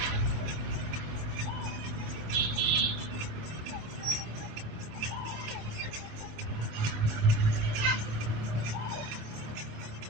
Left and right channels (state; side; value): late; left; 27 ms